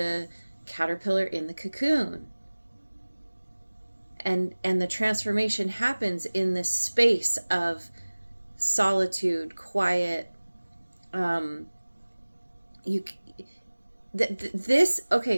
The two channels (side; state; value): both; inverted; correlation -1.00